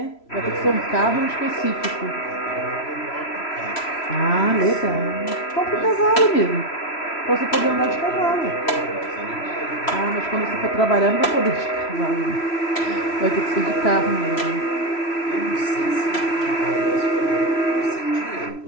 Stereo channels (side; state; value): right; late; 3.0 ms